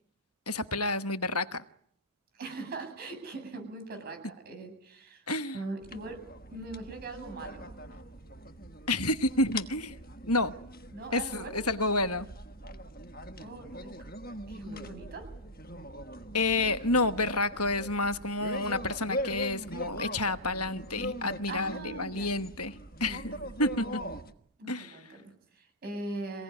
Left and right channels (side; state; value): both; normal; correlation -0.07